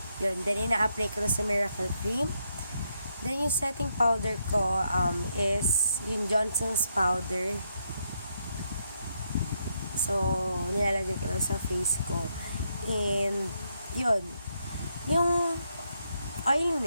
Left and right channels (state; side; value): inverted; both; correlation -0.78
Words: Yun, then ina-apply ko na sa Miracle Cream. Then, yung setting powder ko is yung Johnson's powder. So, nilalagay ko lang sa face ko. And, yun. Yung